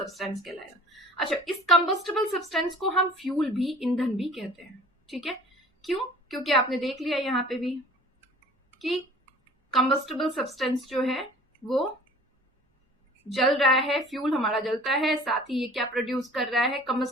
कहलाएगा। अच्छा, इस कंबस्टिबल सब्सटेंस को हम फ्यूल भी, ईंधन भी कहते हैं। ठीक है। क्यों? क्योंकि आपने देख लिया यहाँ पे भी कि कंबस्टिबल सब्सटेंस जो है वो जल रहा है, फ्यूल हमारा जलता है, साथ ही ये क्या प्रोड्यूस कर रहा है?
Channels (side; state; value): both; normal; correlation 0.47